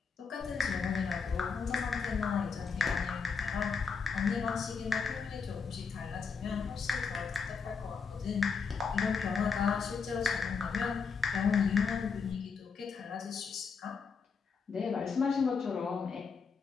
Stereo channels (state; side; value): quieter; right; 5.4 dB